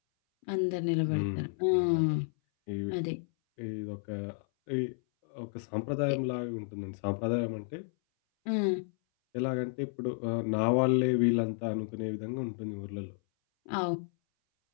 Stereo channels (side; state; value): right; silent; 56 dB below the other